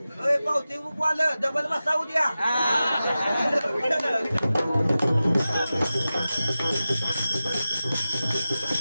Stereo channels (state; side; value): inverted; both; correlation -0.94